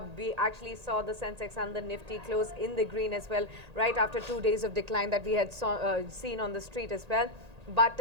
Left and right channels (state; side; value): late; left; 1.8 ms